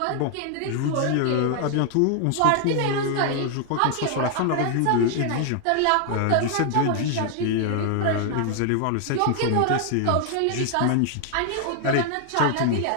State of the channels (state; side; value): different; both; correlation 0.00